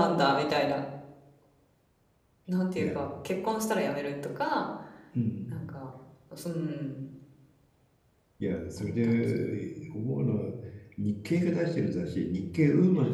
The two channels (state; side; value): identical; both; correlation 1.00